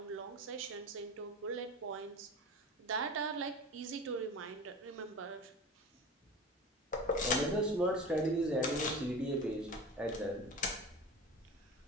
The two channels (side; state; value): both; normal; correlation 0.32